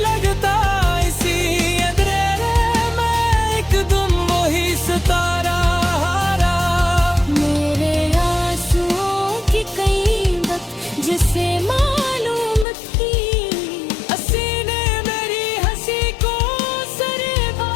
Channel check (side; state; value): right; drops out; at 12.7 s